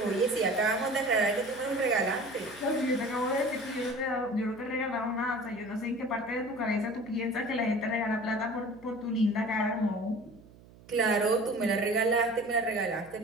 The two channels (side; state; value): right; noise; hum, 23 dB below the sound